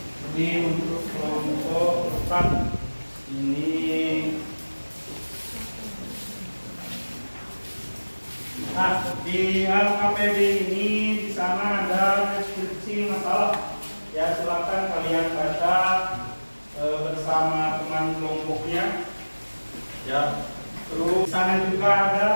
Jadi untuk kelompok depan ini di LKPD ini di sana ada deskripsi masalah. Ya silakan kalian baca bersama teman kelompoknya. Ya. Terus di sana juga ada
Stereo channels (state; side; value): inverted; both; correlation -1.00